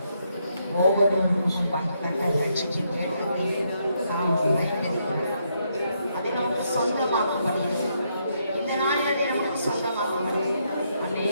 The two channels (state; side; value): inverted; both; correlation -0.76